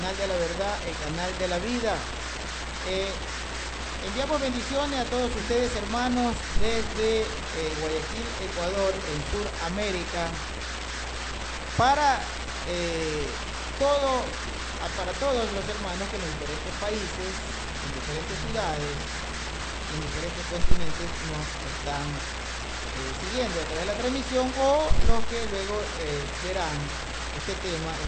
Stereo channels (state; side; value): identical; both; correlation 1.00